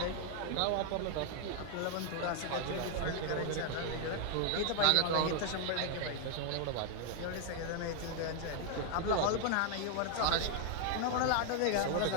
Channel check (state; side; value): different; both; correlation 0.00